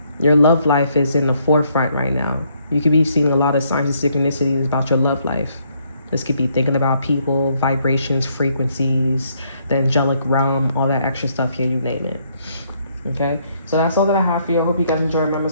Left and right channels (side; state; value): both; inverted; correlation -0.70